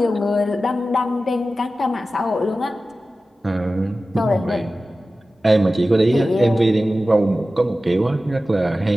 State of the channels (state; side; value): normal; both; correlation 0.95